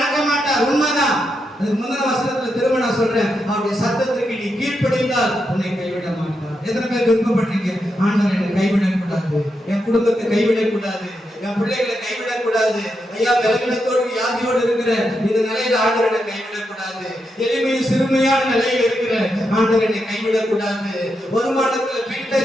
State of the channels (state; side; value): normal; both; correlation 0.84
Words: மாட்டார். உண்மைதான். அதுக்கு முந்தின வசனத்துல திரும்ப நான் சொல்றேன், அவருடைய சத்தத்திற்கு நீ கீழ்ப்படிந்தால் உன்னை கைவிட மாட்டார். எத்தனை பேர் விருப்பப்பட்டீங்க, ஆண்டவர் என்னை கைவிடக்கூடாது, என் குடும்பத்தை கைவிடக்கூடாது, என் பிள்ளைகளை கைவிடக்கூடாது, ஐயா பலவீனத்தோடு வியாதியோடு இருக்கிற இந்த நிலையில ஆண்டவர் என்னை கைவிடக்கூடாது, எளிமையும் சிறுமையான நிலையில் இருக்கிற ஆண்டவர் என்னை கைவிடக்கூடாது, வருமானத்துல